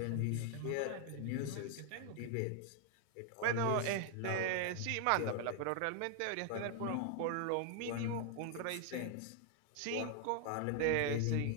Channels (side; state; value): both; different; correlation 0.00